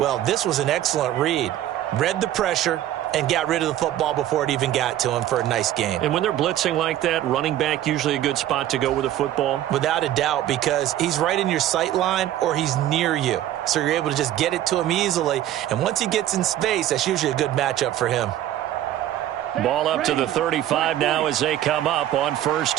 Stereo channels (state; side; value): quieter; left; 12.6 dB